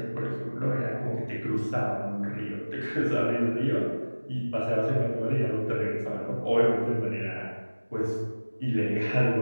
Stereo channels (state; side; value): inverted; both; correlation -1.00